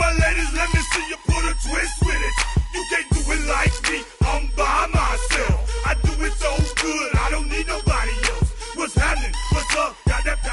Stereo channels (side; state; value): both; identical; correlation 1.00